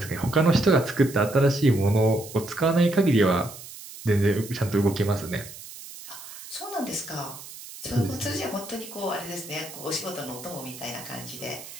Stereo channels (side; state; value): right; noise; hiss, 14 dB below the sound